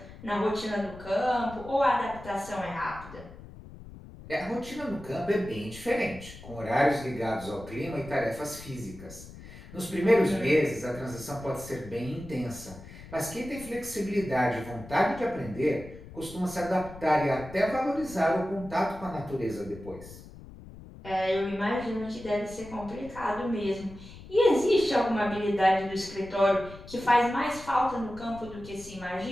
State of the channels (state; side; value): noise; left; rumble, 16 dB below the sound